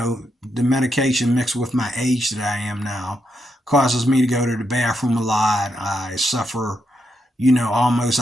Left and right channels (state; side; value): normal; both; correlation 0.82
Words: medication mixed with my age that I am now causes me to go to the bathroom a lot. I suffer, almost